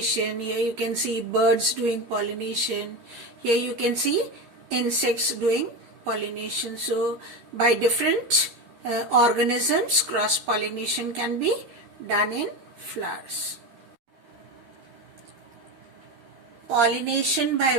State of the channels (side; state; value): left; late; 13 ms